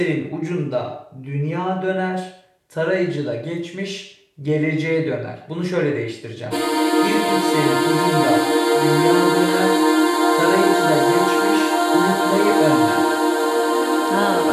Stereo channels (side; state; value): both; identical; correlation 1.00